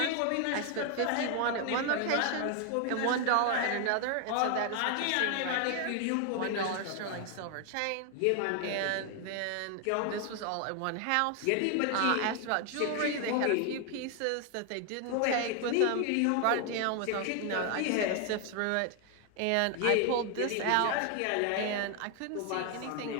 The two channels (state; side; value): different; both; correlation 0.00